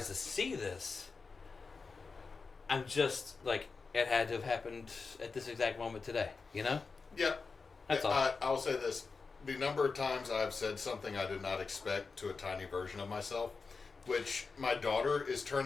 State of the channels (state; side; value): quieter; right; 4.5 dB